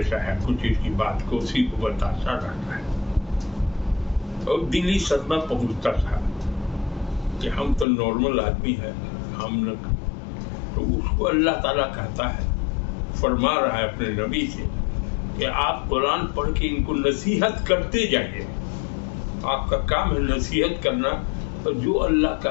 ہے، کچھ اس کی بات کو اسی کو بتاتا رہتا ہے. اور دلی صدمہ پہنچتا تھا کہ ہم تو نارمل آدمی ہیں، ہم نہ. تو اس کو اللہ تعالیٰ کہتا ہے، فرما رہا ہے اپنے نبی سے کہ آپ قرآن پڑھ کے ان کو نصیحت کرتے جائیے. آپ کا کام ہے نصیحت کرنا، اور جو اللہ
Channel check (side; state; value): right; drops out; at 7.9 s